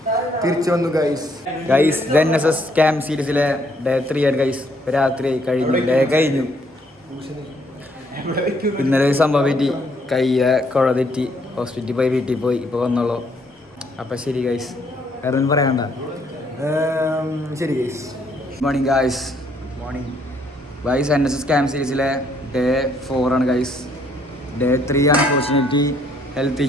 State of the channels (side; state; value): both; normal; correlation 0.68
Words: തിരിച്ചു വന്നു ഗൈസ് NSS ക്യാമ്പ് സീരീസിലെ ഡേ 3 ആണ് ഗൈസ്. രാത്രി കഴിഞ്ഞു, ഡേ കഴിഞ്ഞു. ഇന്നലെ സംഭവം പറ്റി, കയ്യ കുഴ തെറ്റി ഹോസ്പിറ്റലിൽ പോയി, വീട്ടിൽ പോയി, ഇപ്പോൾ വന്നോളൂ. അപ്പം ശരി ഗൈസ്, വേറെ ഒന്നും പറയാണ്ട. ശരി guys. Morning guys, morning guys. NSS camp സീരീസിലെ ഡേ 4 ആണ് guys. Day 3 unfortunately health